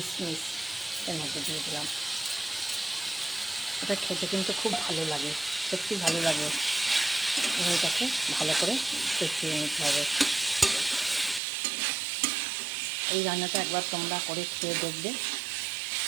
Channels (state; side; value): drops out; left; at 11.4 s